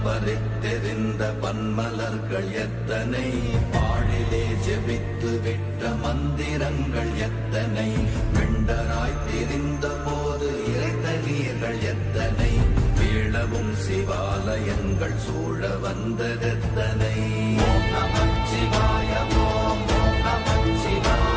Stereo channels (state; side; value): identical; both; correlation 1.00